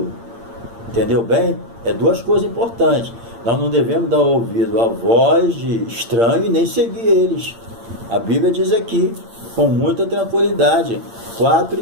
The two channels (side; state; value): left; late; 8.8 ms